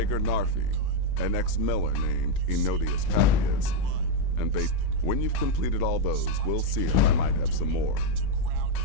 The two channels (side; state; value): both; different; correlation 0.02